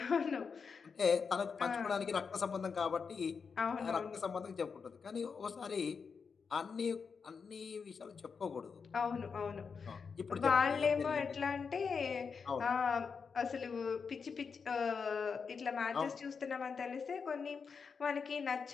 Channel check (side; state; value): right; quieter; 5.6 dB